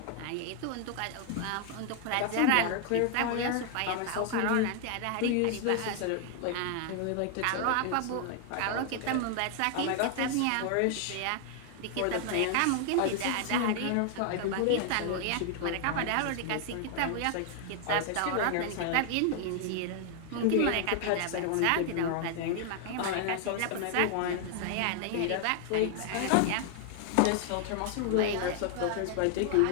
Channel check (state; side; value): different; both; correlation 0.00